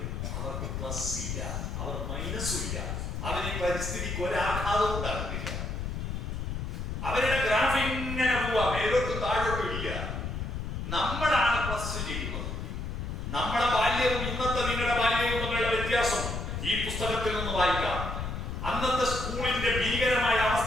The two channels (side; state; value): left; noise; rumble, 4 dB below the sound